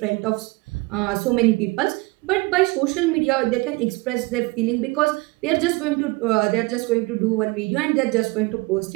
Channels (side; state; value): left; quieter; 24.3 dB